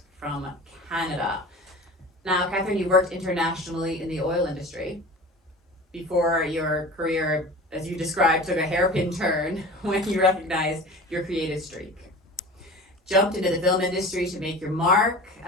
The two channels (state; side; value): normal; both; correlation 0.36